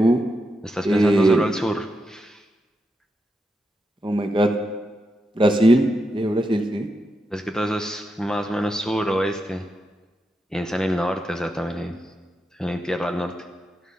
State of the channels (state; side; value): normal; both; correlation 0.85